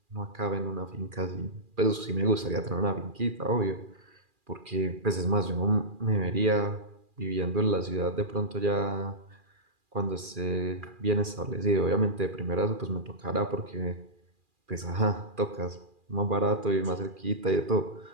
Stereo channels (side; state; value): left; late; 2.4 ms